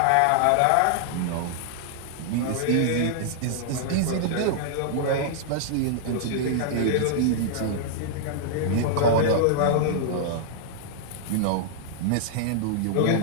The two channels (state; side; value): different; both; correlation -0.01